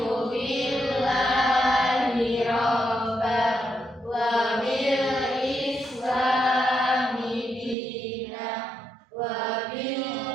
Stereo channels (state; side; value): drops out; left; at 7.8 s